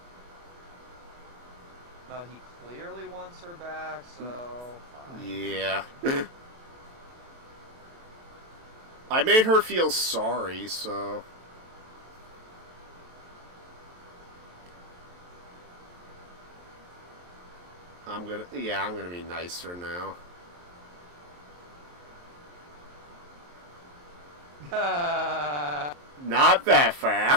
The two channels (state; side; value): late; left; 23 ms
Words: But he clearly wants her back, so. Yeah. I made her feel sorry, so... I'm gonna be nicer now. Not that